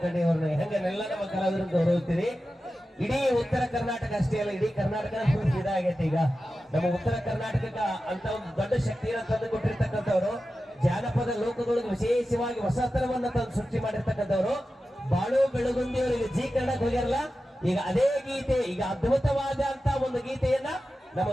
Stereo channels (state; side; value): normal; both; correlation 0.93